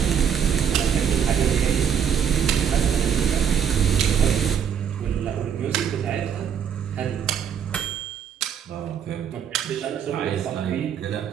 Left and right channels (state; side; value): quieter; left; 8.0 dB